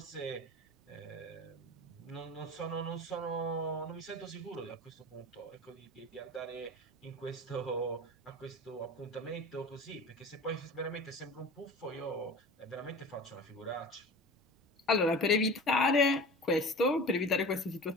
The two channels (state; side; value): normal; both; correlation 0.36